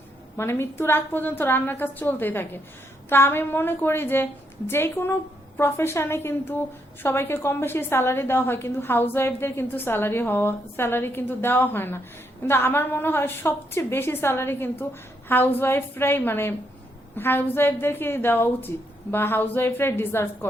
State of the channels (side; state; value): both; normal; correlation 0.77